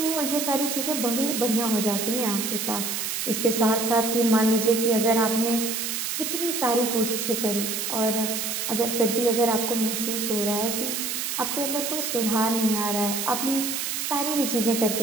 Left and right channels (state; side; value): noise; right; hiss, 2 dB below the sound